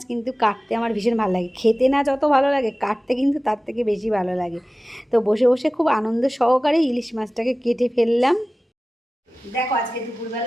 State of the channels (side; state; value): both; normal; correlation 0.97